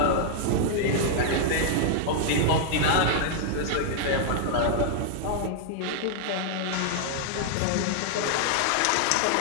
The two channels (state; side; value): different; both; correlation -0.01